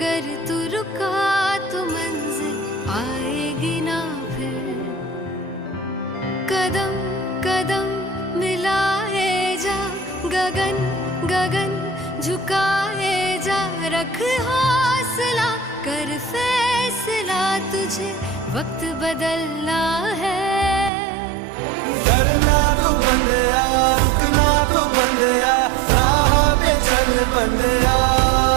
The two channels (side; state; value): left; drops out; at 20.9 s